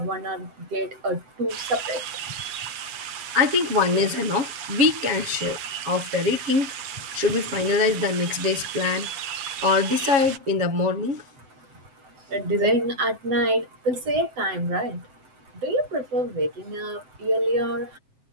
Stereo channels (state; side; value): late; left; 7.3 ms